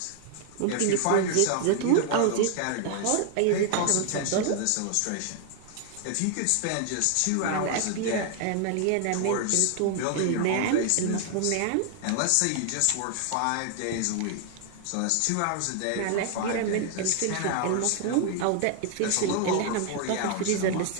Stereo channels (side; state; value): both; different; correlation 0.00